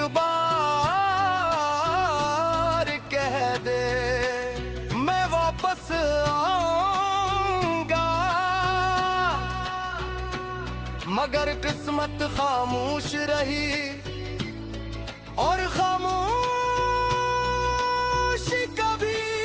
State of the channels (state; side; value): identical; both; correlation 1.00